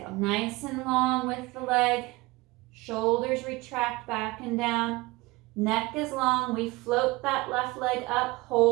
Nice and long with the leg. Shoulders retract back and down. Neck is long. We float that left leg up,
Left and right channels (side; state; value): left; quieter; 21.8 dB